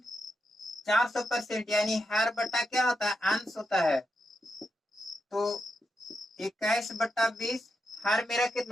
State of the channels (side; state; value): both; normal; correlation 0.85